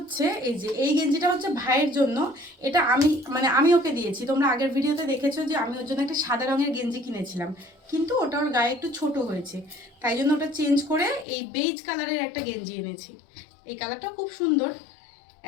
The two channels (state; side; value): drops out; right; at 11.2 s